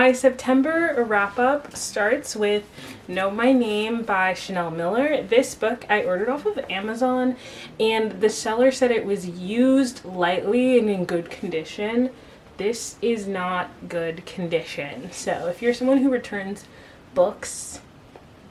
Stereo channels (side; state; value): both; identical; correlation 1.00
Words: September wrap up starts with Know My Name by Chanel Miller. This book I ordered off of Amazon and the seller said it was used lightly and in good condition. This is not good condition. So if you're someone who returns books